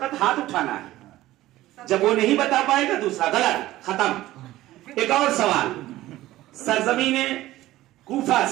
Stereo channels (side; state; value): left; quieter; 15.9 dB